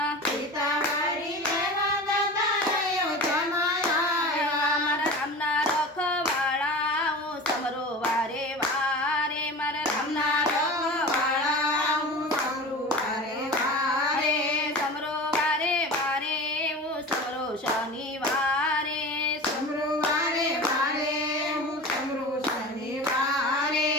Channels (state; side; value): normal; both; correlation 0.33